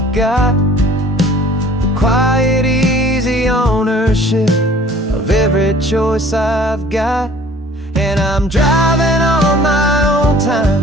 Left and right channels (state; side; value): normal; both; correlation 0.51